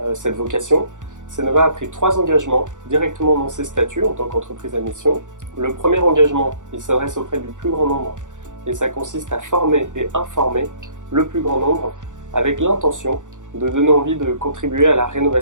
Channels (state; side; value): late; left; 0.86 ms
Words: cette vocation, Cnova a pris 3 engagements directement dans ses statuts en tant qu'entreprise à mission. Le premier engagement, il s'adresse auprès du plus grand nombre et ça consiste à former et informer le plus grand nombre avec l'intention de donner envie de contribuer à la